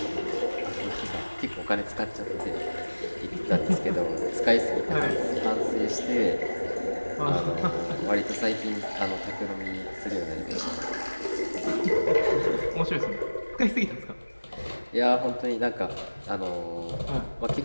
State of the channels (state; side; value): inverted; both; correlation -1.00